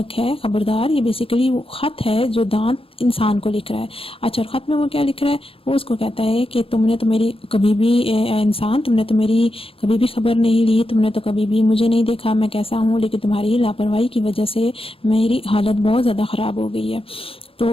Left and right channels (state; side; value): late; right; 0.27 ms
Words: ہے خبردار، یہ بیسیکلی وہ خط ہے جو دانت انسان کو لکھ رہا ہے۔ اچھا، خط میں وہ کیا لکھ رہا ہے؟ وہ اس کو کہتا ہے کہ تم نے تو میری کبھی بھی انسان، تم نے تو میری کبھی بھی خبر نہیں لی، تم نے تو کبھی بھی مجھے نہیں دیکھا میں کیسا ہوں، لیکن تمہاری لاپرواہی کی وجہ سے میری حالت بہت زیادہ خراب ہو گئی ہے۔ تو